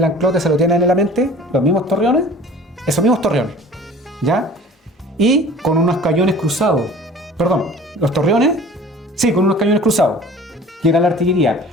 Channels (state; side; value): normal; both; correlation 0.45